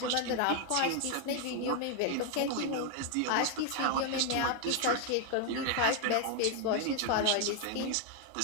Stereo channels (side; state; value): both; different; correlation 0.00